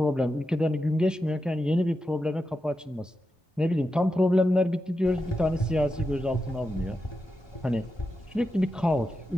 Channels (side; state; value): both; normal; correlation 0.89